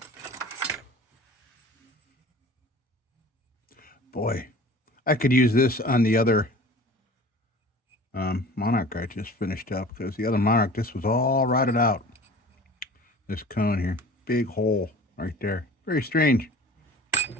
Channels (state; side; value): normal; both; correlation 0.43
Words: Boy, I could use this on the other monarch I just finished up, because the other monarch, this was all rotted out. This cone here, big hole right there. Very strange.